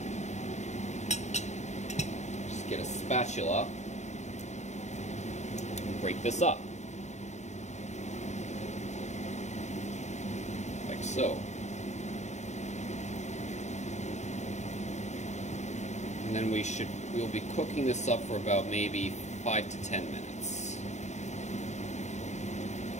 just get a spatula and break this up, like so. And then we'll be cooking this up for about maybe 5 to 10 minutes,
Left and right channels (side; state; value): right; late; 0.34 ms